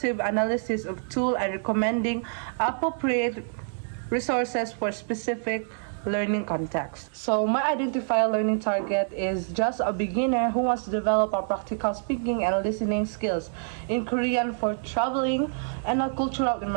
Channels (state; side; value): silent; left; digital silence